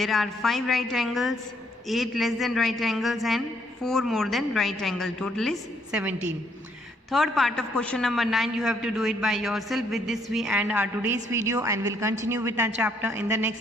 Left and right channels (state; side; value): normal; both; correlation 0.70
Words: are 5 right angles, 8 less than right angles and 4 more than right angle. Total is 17. Third part of question number 9, you have to do it by yourself. With this we end our today's video and will continue with our chapter in the